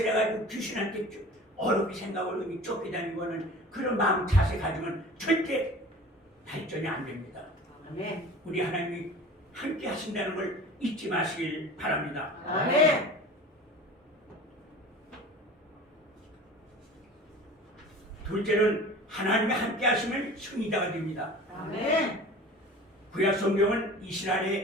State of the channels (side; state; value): both; normal; correlation 0.40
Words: 귀신한테 어렵게 생각을 쫓겨다니는 거는 그런 마음 자세 가지면 절대 발전이 안 됩니다. 아멘. 우리 하나님이 함께 하신다는 걸 잊지 마시길 바랍니다. 아멘. 둘째는 하나님이 함께 하시면 승리자가 됩니다. 아멘. 구약 성경은